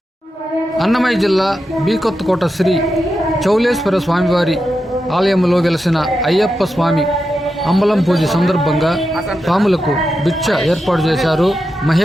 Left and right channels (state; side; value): normal; both; correlation 0.88